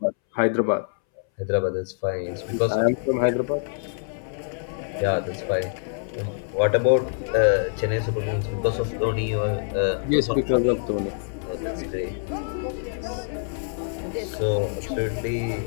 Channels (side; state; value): right; silent; 60 dB below the other